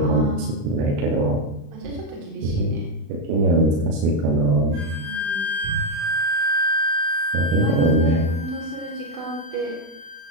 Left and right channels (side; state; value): left; late; 36 ms